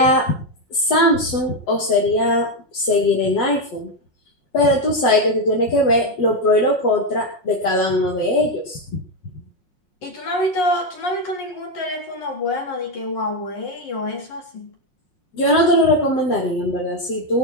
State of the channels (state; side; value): late; right; 5.5 ms